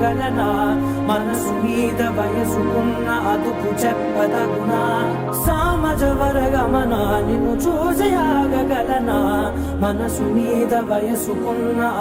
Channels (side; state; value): both; identical; correlation 1.00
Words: మనసు మీద వయసుకున్న అదుపు చెప్పదగునా సామజ వరగమన నిన్ను చూసి ఆగగలనా మనసు మీద వయసుకున్న